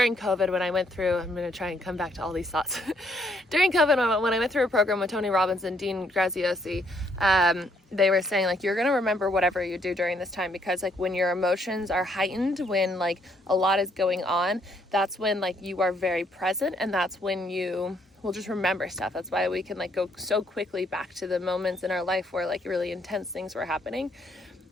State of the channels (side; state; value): both; normal; correlation 0.70